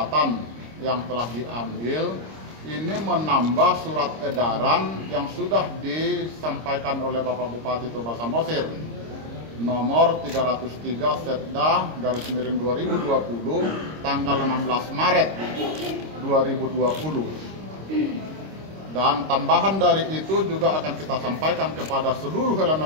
yang telah diambil. Ini menambah surat edaran yang sudah disampaikan oleh Bapak Bupati Toba Samosir nomor 303 Setda _ 2020 tanggal 16 Maret 2020. Dan tambahan dari itu juga akan kita sampaikan kepada seluruh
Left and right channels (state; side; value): late; left; 26 ms